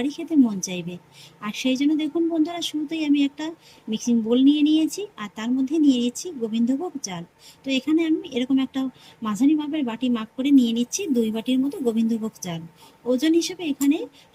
খেতে মন চাইবে। আর সেই জন্য দেখুন বন্ধুরা, শুরুতেই আমি একটা মিক্সিং বোল নিয়ে নিয়েছি, আর তার মধ্যে নিয়ে নিচ্ছি গোবিন্দভোগ চাল। তো এখানে আমি এরকম একটা মাঝারি মাপের বাটি মাপ করে নিয়ে নিচ্ছি 2 বাটির মতো গোবিন্দভোগ চাল। ওজন হিসেবে এখানে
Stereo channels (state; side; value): identical; both; correlation 1.00